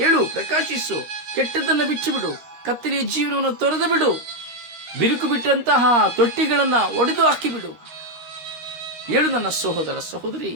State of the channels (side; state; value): left; late; 13 ms